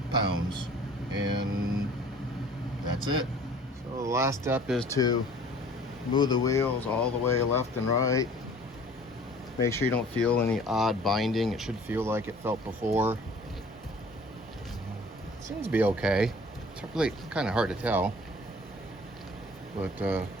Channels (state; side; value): normal; both; correlation 0.50